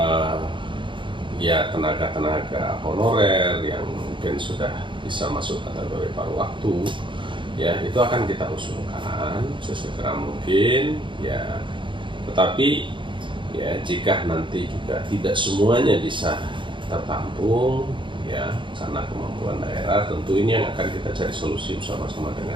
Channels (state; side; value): late; left; 0.24 ms